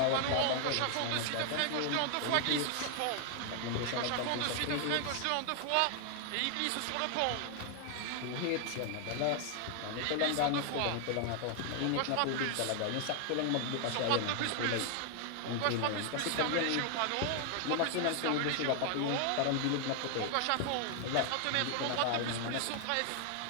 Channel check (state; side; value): different; both; correlation 0.00